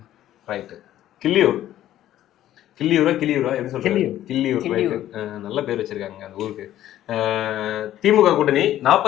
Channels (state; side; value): quieter; right; 12.8 dB